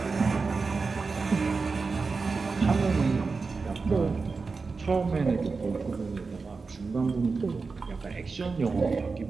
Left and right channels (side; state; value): left; quieter; 4.4 dB